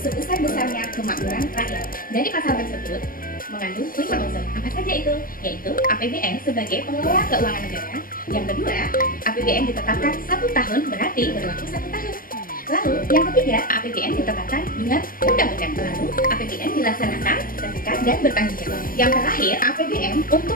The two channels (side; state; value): right; late; 0.41 ms